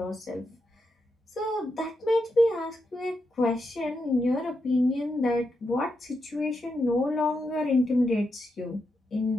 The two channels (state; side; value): normal; both; correlation 0.85